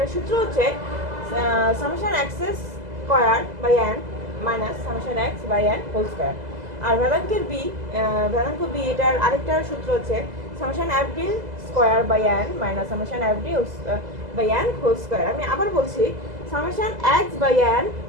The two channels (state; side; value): late; left; 2.0 ms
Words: সূত্র হচ্ছে summation X square by N minus summation X by N whole square. আর ভেদাঙ্ক বি এটার আরেকটা সূত্র হচ্ছে summation F D square by N minus summation F D by N whole square. আমি আবার বলছি, summation x by n